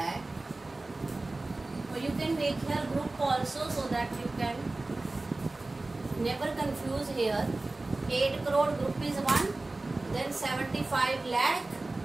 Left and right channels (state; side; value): quieter; left; 3.1 dB